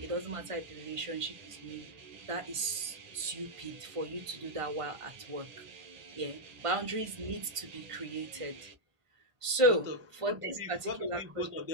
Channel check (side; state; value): left; late; 1.5 ms